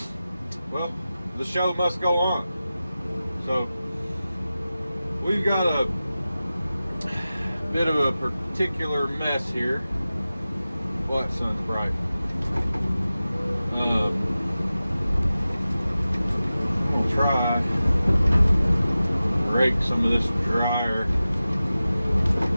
well, the show must go on. So we've got a bit of a particular mess here. What, sun's bright. I'm gonna try to rake some of this drier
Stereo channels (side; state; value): both; inverted; correlation -0.95